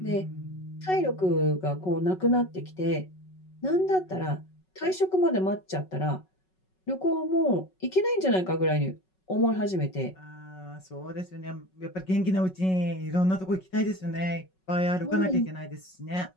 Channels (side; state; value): right; late; 5.4 ms